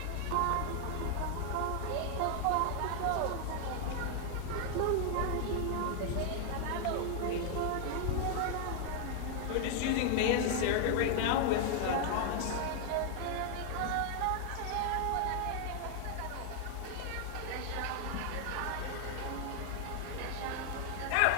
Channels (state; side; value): different; both; correlation 0.00